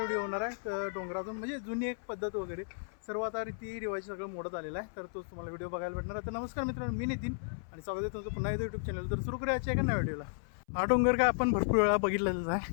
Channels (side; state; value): right; silent; 55 dB below the other